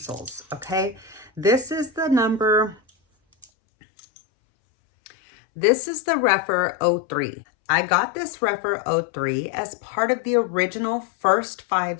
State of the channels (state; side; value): drops out; right; at 3.5 s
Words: okay, this is the REPHR 03. I got this REPHR 03 as part of the original first